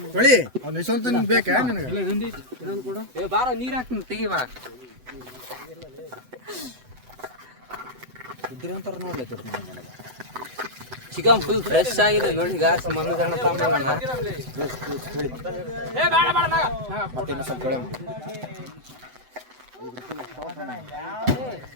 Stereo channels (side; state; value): left; late; 7.9 ms